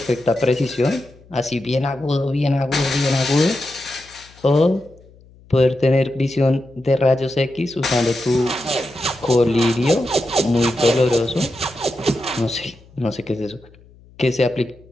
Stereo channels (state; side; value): noise; left; hum, 26 dB below the sound